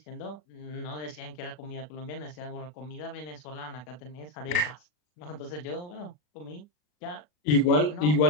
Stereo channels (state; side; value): late; right; 40 ms